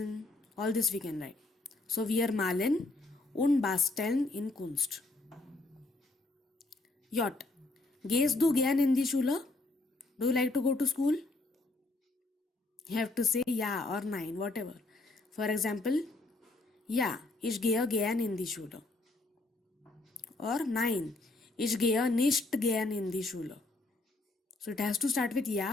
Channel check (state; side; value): quieter; right; 3.0 dB